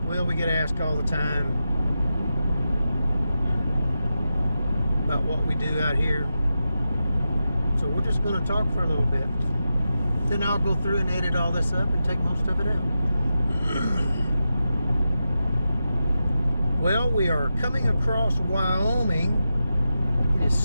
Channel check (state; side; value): inverted; both; correlation -0.90